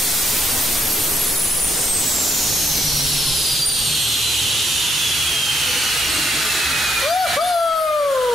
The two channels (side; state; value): both; normal; correlation 0.75